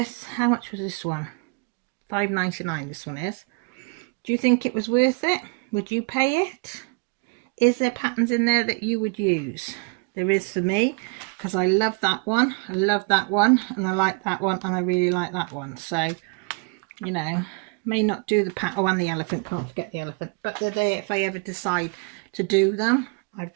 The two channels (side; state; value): left; quieter; 34.0 dB